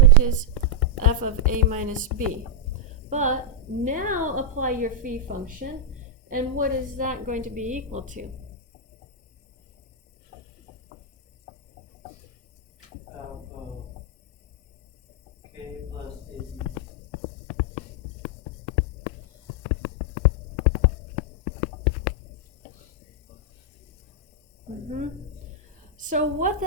is f of a minus b. But now apply your phi function, and what is that going to be equal to? K plus AB. So what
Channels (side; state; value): both; normal; correlation -0.03